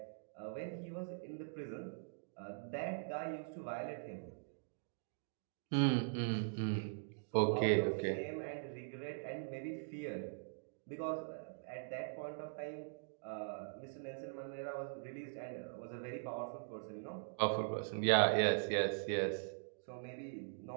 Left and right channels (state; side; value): silent; left; digital silence